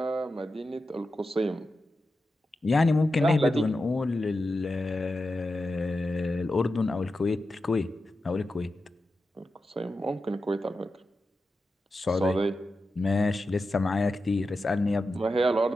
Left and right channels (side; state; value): both; normal; correlation 0.90